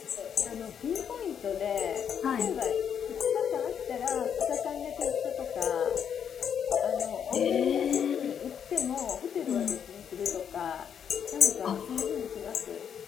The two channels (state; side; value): quieter; right; 8.1 dB